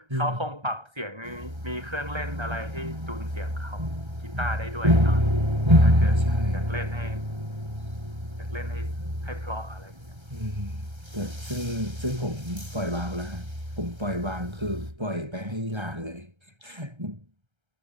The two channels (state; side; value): late; left; 1.3 ms